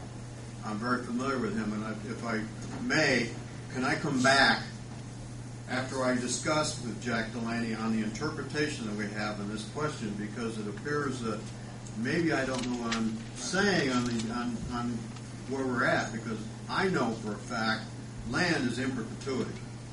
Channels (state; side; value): identical; both; correlation 1.00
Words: I'm very familiar with him, and if I may, can I come back after I discuss with Jack Delaney on the interpretation that we have in this question, because it appears that maybe I don't know what I'm saying on where we're at, because I know for a fact land is in perpetuity.